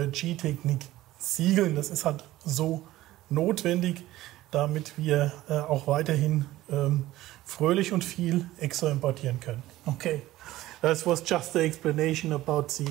Siegeln. Das ist halt so notwendig, damit wir auch weiterhin fröhlich und viel EXO importieren können. Okay. That was just the explanation about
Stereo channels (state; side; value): quieter; left; 16.0 dB